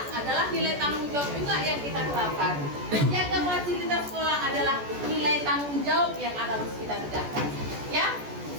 adalah nilai tanggung jawab juga yang kita terapkan. Menjaga fasilitas sekolah adalah nilai tanggung jawab yang harus kita tegakkan. Ya,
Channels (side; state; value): left; late; 14 ms